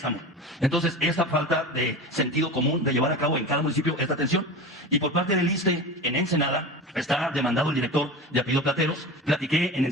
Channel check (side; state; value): both; normal; correlation 0.30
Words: Entonces, esta falta de sentido común de llevar a cabo en cada municipio esta atención. Y por parte del ISSSTE, en Ensenada, está demandado el director de apellido Plateros. Platiqué en